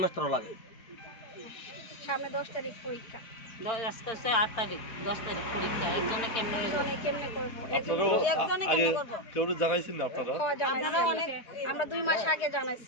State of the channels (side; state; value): right; late; 4.7 ms